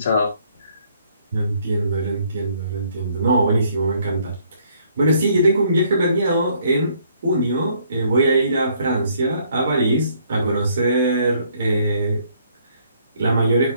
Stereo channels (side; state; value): both; inverted; correlation -0.66